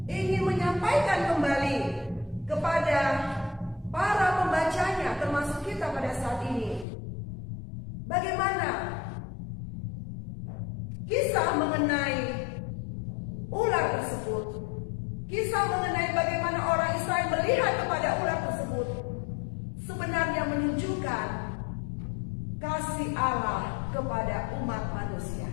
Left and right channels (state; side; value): drops out; right; at 6.9 s